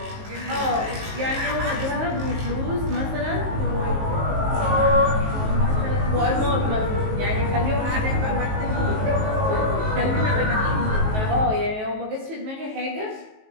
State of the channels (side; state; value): left; late; 19 ms